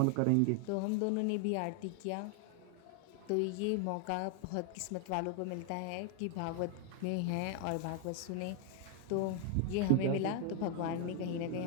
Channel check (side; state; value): both; different; correlation 0.00